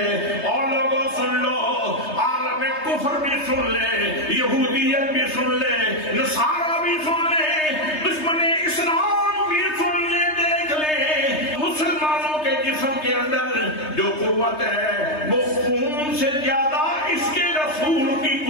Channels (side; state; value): right; late; 3.3 ms